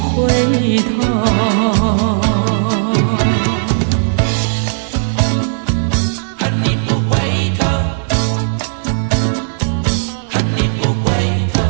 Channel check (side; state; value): left; silent; 70 dB below the other